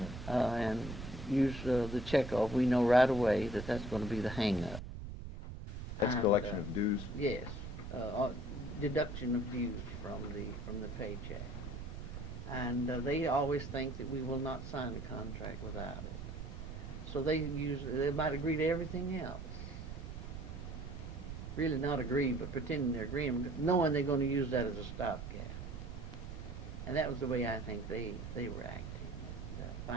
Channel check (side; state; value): right; noise; rumble, 8 dB below the sound